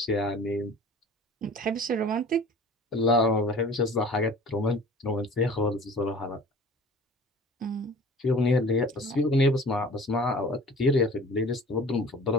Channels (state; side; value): normal; both; correlation 0.45